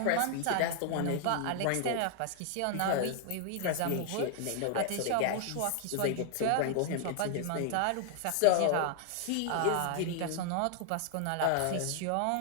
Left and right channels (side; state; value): both; different; correlation 0.00